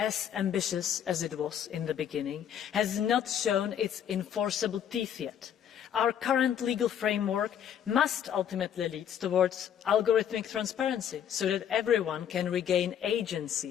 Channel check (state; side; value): quieter; right; 9.2 dB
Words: ambitious as it was in the beginning, has not shown its enforceable teeth yet. Our current legal framework must ultimately lead towards algorithmic transparency so that everyone can regain